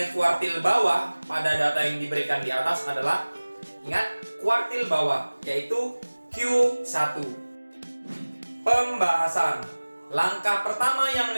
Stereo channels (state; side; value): inverted; both; correlation -1.00